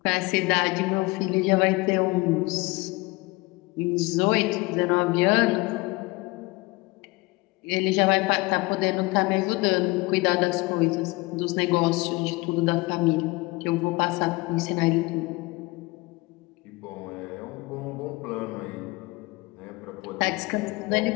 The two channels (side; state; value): right; quieter; 23.3 dB